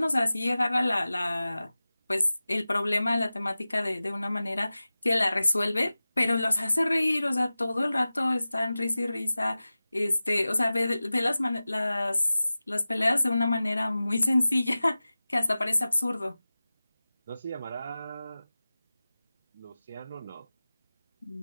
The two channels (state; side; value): inverted; both; correlation -0.96